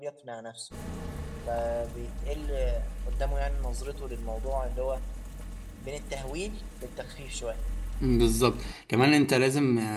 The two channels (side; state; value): both; identical; correlation 1.00